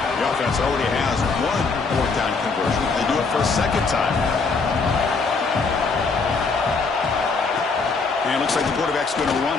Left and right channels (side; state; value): right; quieter; 4.4 dB